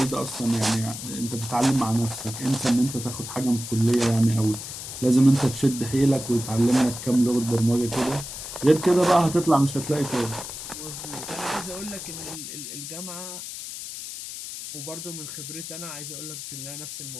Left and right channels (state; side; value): noise; left; hiss, 9 dB below the sound